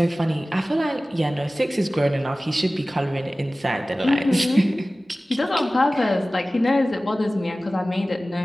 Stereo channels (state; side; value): normal; both; correlation 0.97